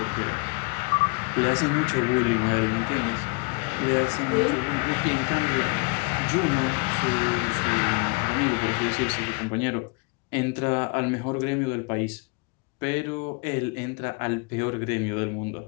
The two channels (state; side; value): quieter; right; 30.8 dB